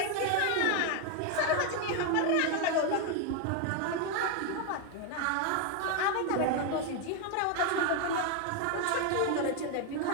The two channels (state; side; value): different; both; correlation 0.01